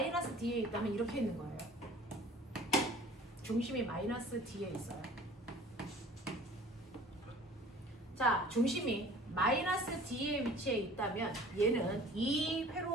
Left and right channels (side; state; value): both; normal; correlation 0.47